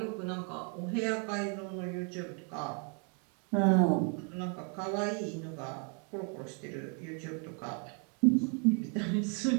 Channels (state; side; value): quieter; left; 38.9 dB